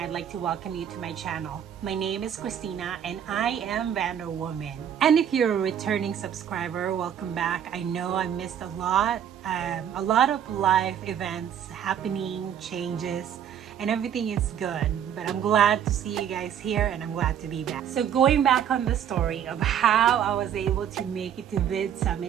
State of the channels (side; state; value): left; quieter; 9.2 dB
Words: like to welcome you to my channel. My name is Christina and I am VanderWoman. And if you're a returning subscriber, welcome back. I know I missed a lot of life events happening, changes, and everything is good, but I'm glad to see you guys here and I'm glad to be back. So going back on the story of how I was able to make it to